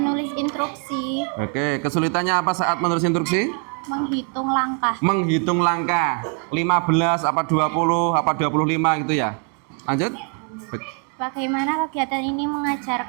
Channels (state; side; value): quieter; left; 37.4 dB